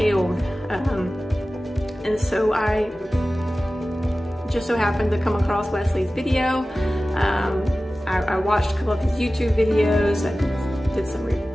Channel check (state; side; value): normal; both; correlation 0.96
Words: And so I just so happened to come across Wesley's video. I watched a couple of his YouTube videos.